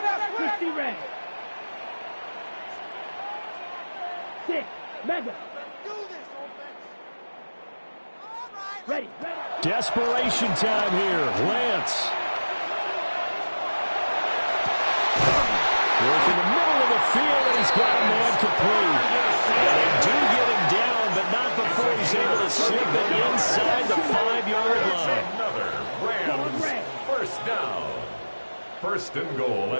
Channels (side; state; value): both; inverted; correlation -1.00